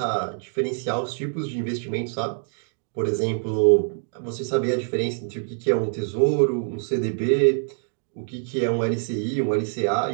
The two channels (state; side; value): silent; left; digital silence